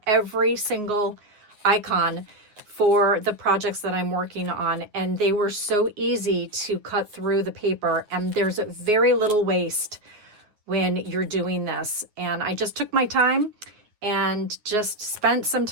every single icon for the projects that I'm working on, and they were so easy to cut through the paper, and there's very little waste when you're doing this. And I just took my time and just spent some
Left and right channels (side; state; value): left; late; 9.5 ms